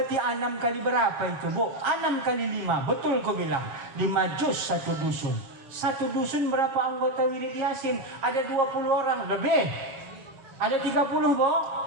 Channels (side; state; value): left; late; 7.4 ms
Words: 6 kali berapa itu, Bu? 6 kali 5. Betul kau bilang. 5 juz satu dusun. Satu dusun berapa anggota wirid Yasin? Ada 20 orang lebih. Ada 30, Bu?